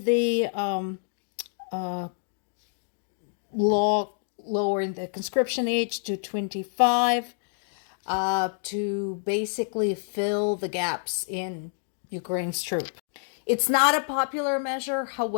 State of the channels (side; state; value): right; silent; digital silence